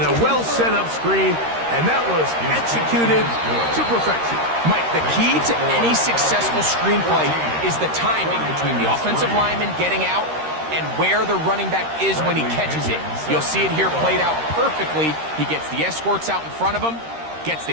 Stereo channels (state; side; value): late; left; 13 ms